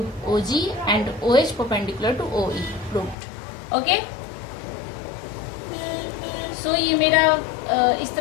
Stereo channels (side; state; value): right; drops out; at 3.2 s